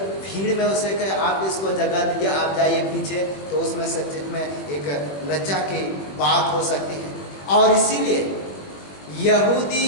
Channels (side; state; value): right; late; 21 ms